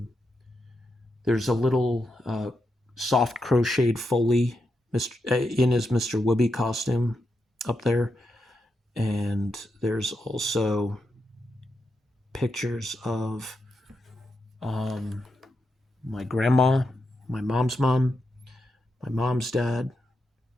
There's a little soft crocheted Foley in his Mr. Wibby costume up there. And there's also pictures of my grandma, my mom's mom, my mom's dad,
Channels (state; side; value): normal; both; correlation 0.85